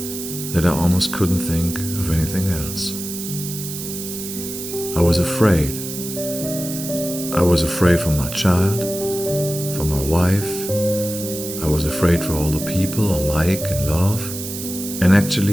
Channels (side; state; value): right; noise; hiss, 8 dB below the sound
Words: that I almost couldn't think of anything else. I was afraid. I was afraid for my child, for my wife. I was afraid for all the people I like and love, and